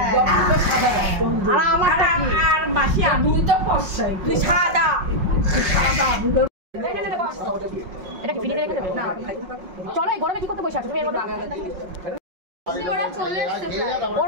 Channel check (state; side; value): late; left; 5.5 ms